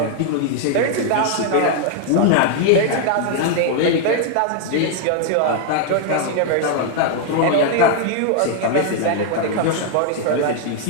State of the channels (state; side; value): different; both; correlation 0.00